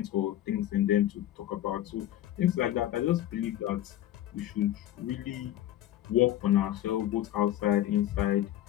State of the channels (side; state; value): right; quieter; 12.9 dB